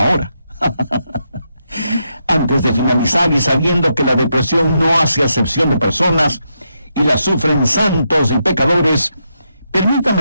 Antes de finalizar y sabiendo que la depresión no hace acepción de personas y la sufren santos y pecadores,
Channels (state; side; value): inverted; both; correlation -0.82